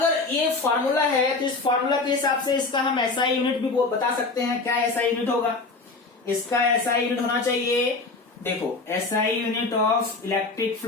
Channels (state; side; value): quieter; right; 3.7 dB